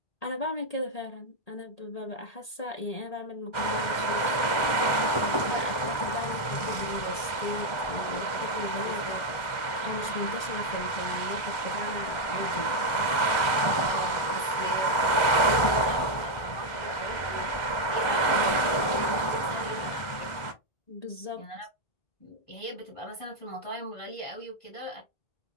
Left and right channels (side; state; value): right; late; 1.4 ms